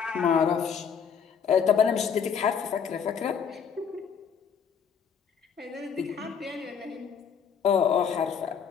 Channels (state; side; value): quieter; right; 7.0 dB